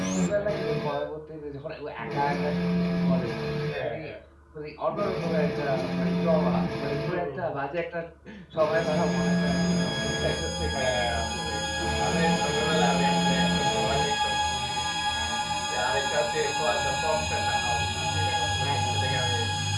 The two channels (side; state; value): both; identical; correlation 1.00